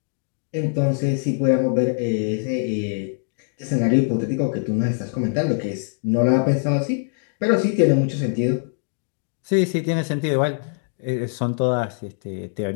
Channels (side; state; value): right; silent; digital silence